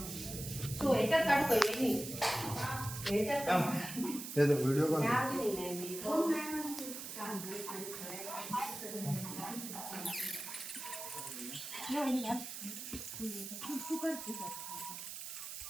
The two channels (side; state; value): right; noise; hiss, 8 dB below the sound